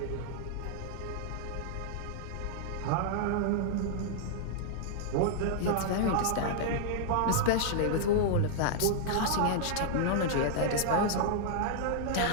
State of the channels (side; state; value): both; different; correlation -0.01